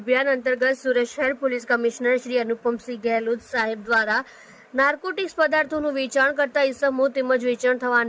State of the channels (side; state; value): both; identical; correlation 1.00